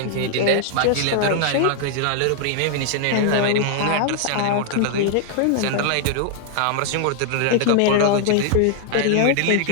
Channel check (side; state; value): both; different; correlation 0.00